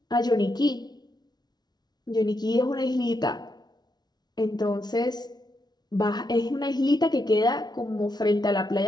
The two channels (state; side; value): late; right; 0.20 ms